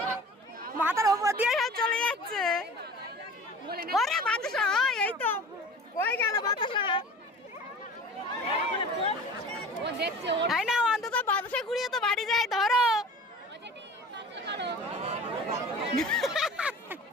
মাথার ওপর দিয়ে সব চলে যাচ্ছে ওরে বাতাসা এই তো কই গেল বাতাসা তাই না অন্তত বাতাসা কুড়িয়ে তো বাড়ি যায় ধরো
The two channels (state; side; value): normal; both; correlation 0.40